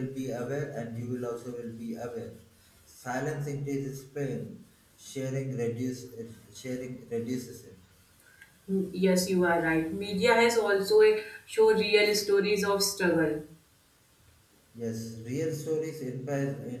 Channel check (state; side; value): identical; both; correlation 1.00